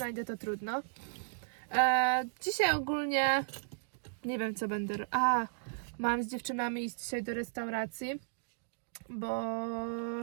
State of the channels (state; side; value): silent; left; digital silence